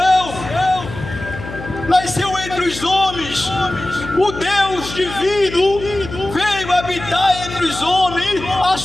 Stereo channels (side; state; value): left; noise; hum, 11 dB below the sound